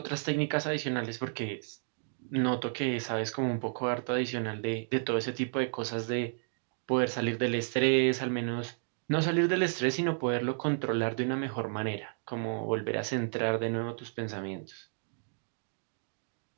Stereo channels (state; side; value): silent; left; digital silence